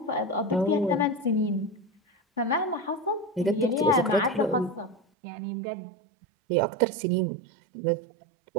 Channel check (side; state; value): left; drops out; at 5.0 s